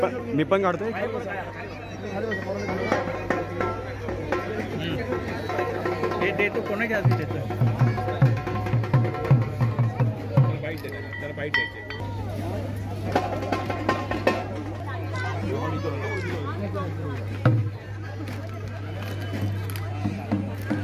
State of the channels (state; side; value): identical; both; correlation 1.00